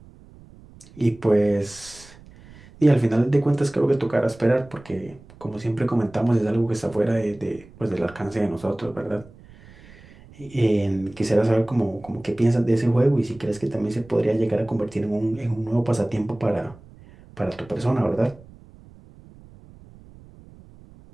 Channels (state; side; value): noise; right; rumble, 22 dB below the sound